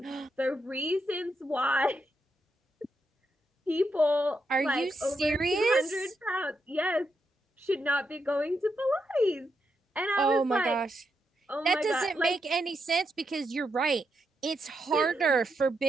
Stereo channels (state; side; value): normal; both; correlation 0.82